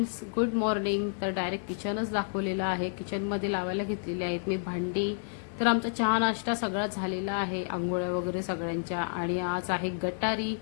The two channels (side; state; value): right; silent; digital silence